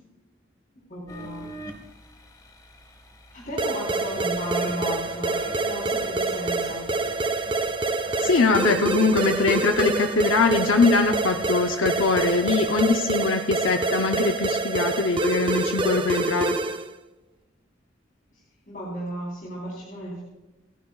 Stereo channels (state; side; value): normal; both; correlation 0.29